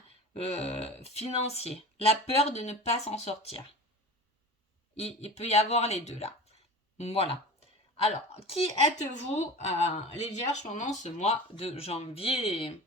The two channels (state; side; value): normal; both; correlation 0.35